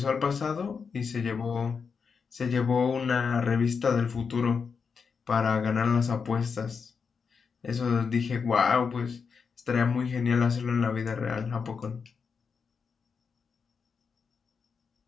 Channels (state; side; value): quieter; right; 5.7 dB